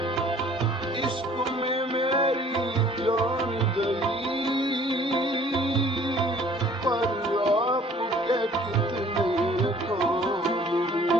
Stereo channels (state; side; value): normal; both; correlation 0.54